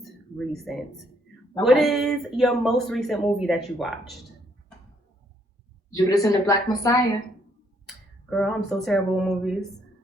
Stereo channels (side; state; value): both; normal; correlation 0.70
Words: recent. What Okay. is your most recent movie that you watched? Judas and the Black Messiah. Girl, I'm so terrible with movies.